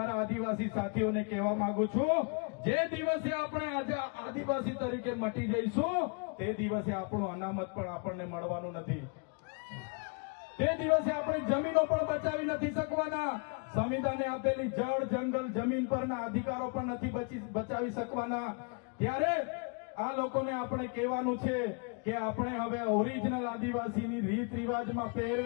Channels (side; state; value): right; quieter; 36.6 dB